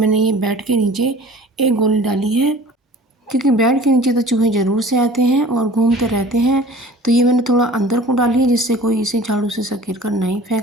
ये बेड के नीचे एक गोली डाली है। क्योंकि बेड के नीचे तो चूहे ज़रूर से आते हैं और घूमते रहते हैं। तो ये मैंने थोड़ा अंदर को डाली है जिससे कोई इसे झाड़ू से सकेर कर नहीं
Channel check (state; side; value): normal; both; correlation 0.44